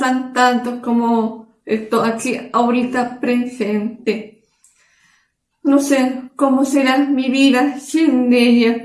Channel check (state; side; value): identical; both; correlation 1.00